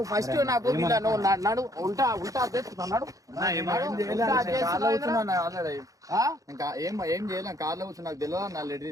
ఫస్ట్ నాకు నువ్వు నడు ఉల్టా ఇంకా ఏం చేయలేం. కార్లో కూర్చొని నాకు తెలియదు, నా లెటర్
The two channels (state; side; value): late; left; 0.17 ms